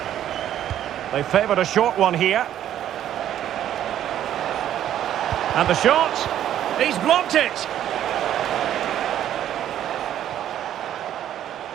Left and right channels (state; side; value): quieter; left; 11.2 dB